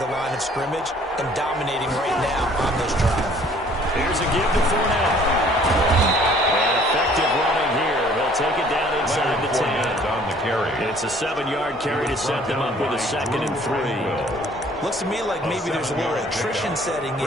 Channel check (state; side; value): normal; both; correlation 0.56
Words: the line of scrimmage and dominating right now on this drive. Here's a give to Fournette. And effective running here. They'll take it down inside the 10. On the carry. It's a 7-yard carry to set them up with a 2nd and 3. Looks to me like maybe there's a little attrition setting